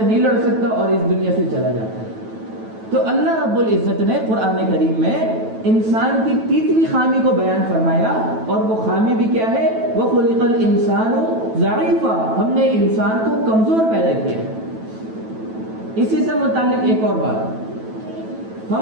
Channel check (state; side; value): late; left; 9.1 ms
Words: نہیں لڑ سکتا اور اس دنیا سے چلا جاتا ہے. تو اللہ رب العزت نے قرآن کریم میں انسان کی تیسری خامی کو بیان فرمایا, اور وہ خامی بھی کیا ہے؟ وَخُلِقَ الْإِنسَانُ ضَعِيفًا. ہم نے انسان کو کمزور پیدا کیا. اسی سے متعلق ایک اور بات